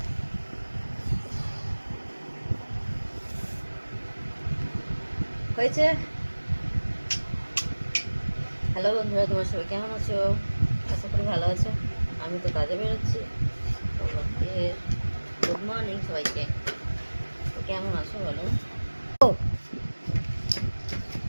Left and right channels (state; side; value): inverted; both; correlation -1.00